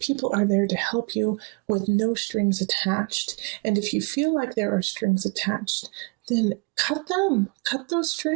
are there to help you with no strings attached. And if you feel like there are strings attached, then cut those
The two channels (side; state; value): left; quieter; 32.1 dB